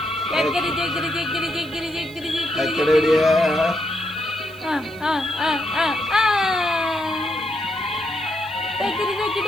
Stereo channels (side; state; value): right; noise; hiss, 24 dB below the sound